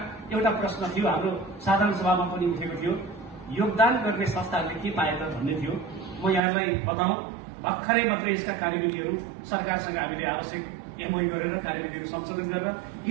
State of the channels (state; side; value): drops out; left; at 6.4 s